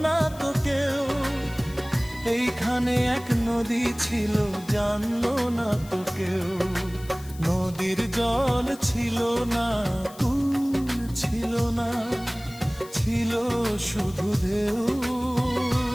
না তো কেউ। এইখানে এক নদী ছিল, জানলো না তো কেউ। নদীর জল ছিল না, কুল ছিল না, ছিল শুধু ঢেউ।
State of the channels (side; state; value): left; noise; hiss, 20 dB below the sound